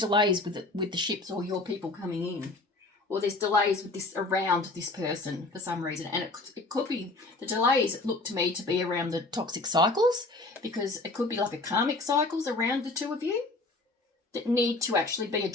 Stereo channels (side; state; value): right; quieter; 3.1 dB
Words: with the ships or your people coming in, or there's delays with this around this person for some reason. And it could be the delays look to me to be around the toxic cycles, because it could be like a karmic cycles around the two of you that need to actually be